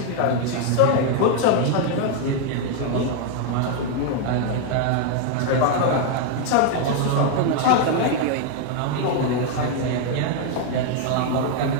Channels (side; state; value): both; different; correlation 0.01